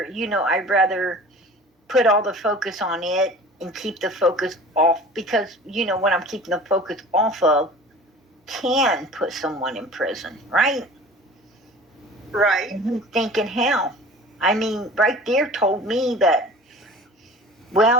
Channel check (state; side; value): normal; both; correlation 0.42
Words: put all the focus on it and keep the focus off, because, what I'm keeping the focus off of can put someone in prison, right? Right. And he's thinking, hell, I mean, right there told me that,